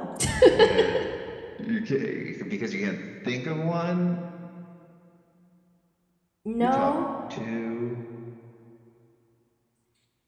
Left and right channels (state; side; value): identical; both; correlation 1.00